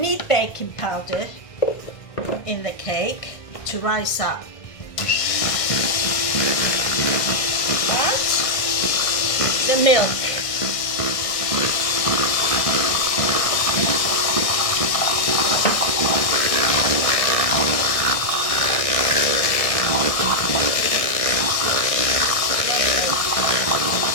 baking powder in the cake to rise up. And the milk.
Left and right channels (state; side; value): late; right; 1.6 ms